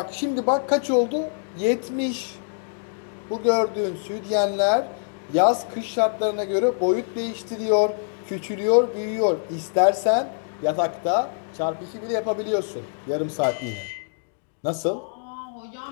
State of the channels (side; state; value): right; silent; digital silence